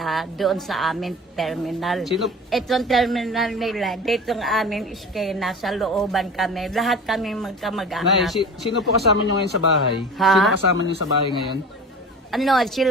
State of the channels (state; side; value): normal; both; correlation 0.37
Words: doon sa amin terminal. Sino, Itong terminal nila, dito ng aming iskena, sa looban kami. Lahat kami Nay, magkamag-anak. sino po kasama nyo ngayon sa bahay? Ha? Sino kasama nyo sa bahay ngayon? Ano,